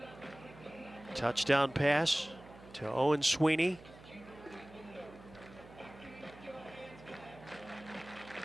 Touchdown pass to Owen Sweeney.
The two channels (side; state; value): right; noise; hum, 19 dB below the sound